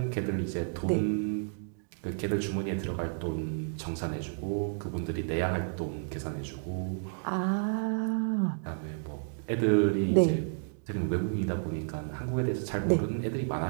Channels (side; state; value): left; silent; digital silence